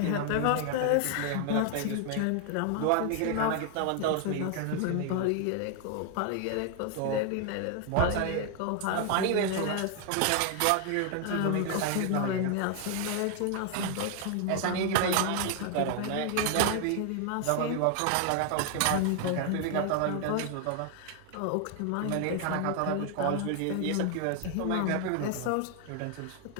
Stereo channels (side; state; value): both; different; correlation 0.00